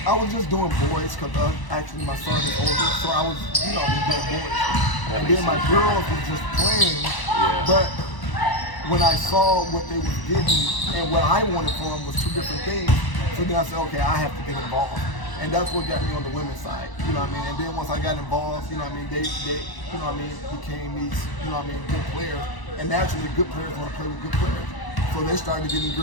just doing boys because actually my son is older, so I was, you know, doing boys. And then my girls were just playing, but when I saw what they were getting and what I wanted for them was 2 different things, so then I said, okay, I have to get involved. And that's what got me on the women's side, you know what I mean? And then once I got involved, you know what I mean, they you know what I mean, became these, you know what I mean, good players. And naturally, good players want to play with good players. So they started getting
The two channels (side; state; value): right; late; 1.0 ms